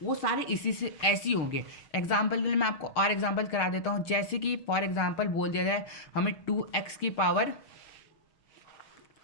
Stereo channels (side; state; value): right; late; 6.3 ms